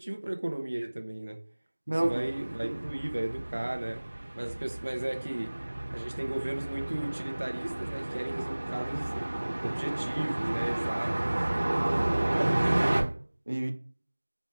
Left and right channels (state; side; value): inverted; both; correlation -1.00